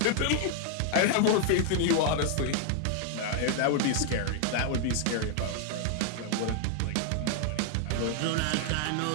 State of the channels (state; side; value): different; both; correlation 0.00